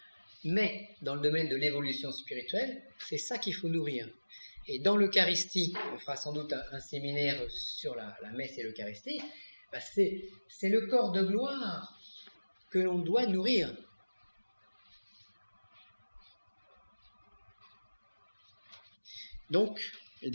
mais dans le domaine de l'évolution spirituelle, c'est ça qu'il faut nourrir. Et dans l'Eucharistie, on fera sans doute un séminaire sur la messe et l'Eucharistie, c'est le corps de gloire que l'on doit nourrir. Donc, et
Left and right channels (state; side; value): inverted; both; correlation -1.00